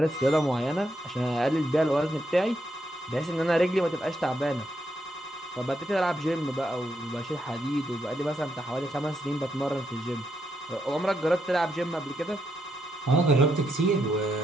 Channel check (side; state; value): both; normal; correlation 0.80